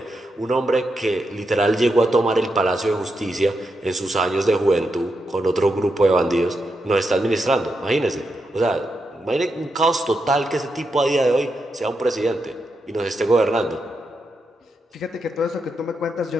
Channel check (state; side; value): normal; both; correlation 0.85